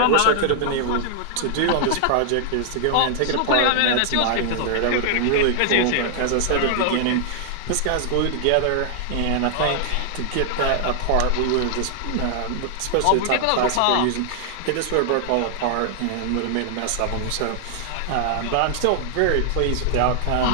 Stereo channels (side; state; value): both; different; correlation 0.00